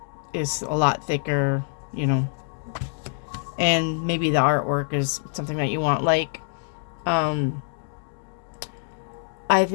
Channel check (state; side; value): silent; right; digital silence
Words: is a lot thicker, and maybe the artwork is something that you want. Like, one